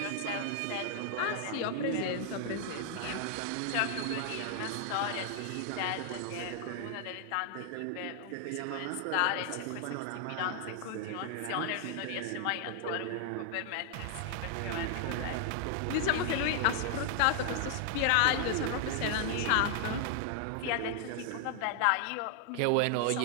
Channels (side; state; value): both; different; correlation 0.00